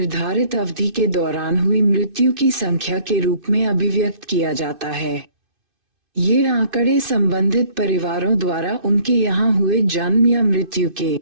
अवधि के दौरान हुई मृत्यु की संख्या के रूप में अभिव्यक्त किया जाता है। ये आंकड़े संबंधित परिवारों द्वारा उनके यहाँ हुए जन्म या मृत्यु के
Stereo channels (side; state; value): left; late; 2.6 ms